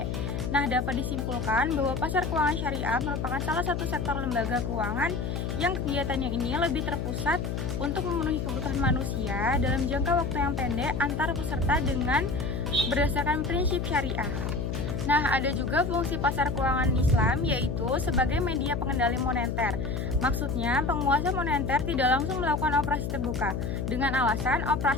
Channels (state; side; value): noise; left; hum, 2 dB below the sound